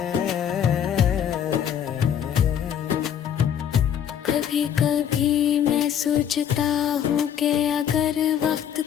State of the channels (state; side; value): quieter; right; 9.2 dB